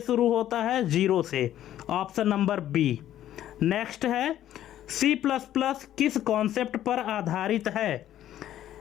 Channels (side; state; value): right; quieter; 12.1 dB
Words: शुरू होता है 0 से, ऑप्शन नंबर बी। नेक्स्ट है C++ किस कॉन्सेप्ट पर आधारित है?